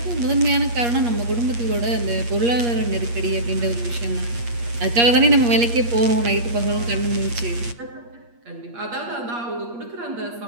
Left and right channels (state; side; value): late; left; 8.5 ms